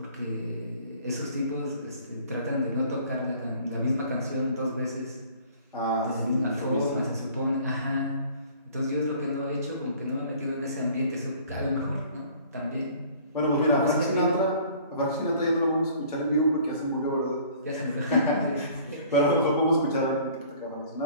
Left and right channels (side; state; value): both; inverted; correlation -0.52